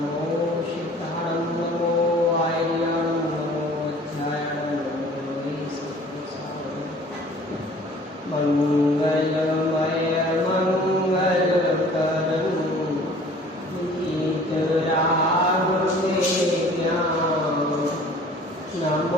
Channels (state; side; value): normal; both; correlation 0.50